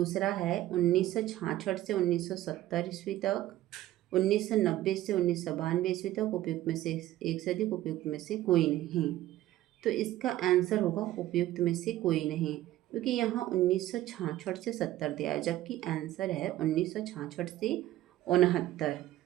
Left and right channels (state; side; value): quieter; left; 14.6 dB